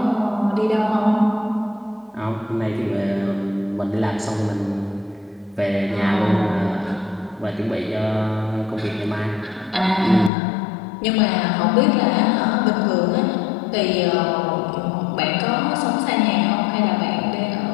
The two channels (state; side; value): drops out; right; at 10.3 s